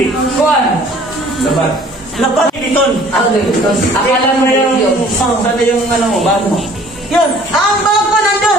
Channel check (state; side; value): normal; both; correlation 0.53